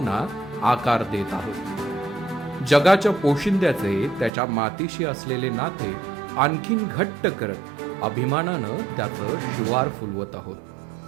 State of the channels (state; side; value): drops out; left; at 4.3 s